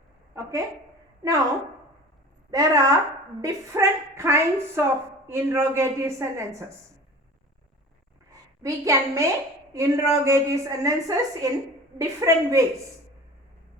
Okay. Now, there are different kinds of interrogative sentences. We can make interrogative sentences in different ways.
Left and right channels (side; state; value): both; normal; correlation 0.39